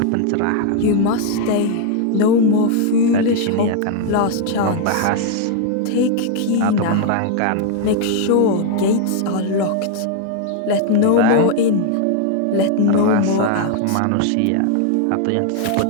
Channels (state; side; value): different; both; correlation 0.00